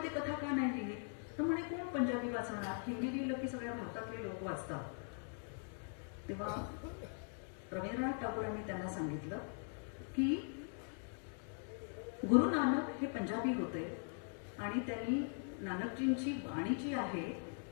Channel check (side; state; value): right; silent; 50 dB below the other